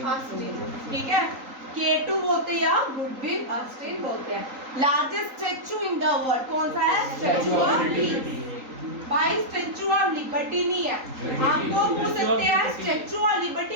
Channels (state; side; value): late; left; 3.8 ms